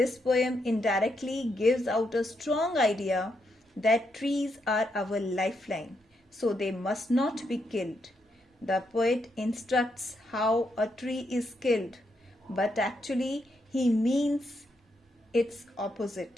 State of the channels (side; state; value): both; normal; correlation 0.80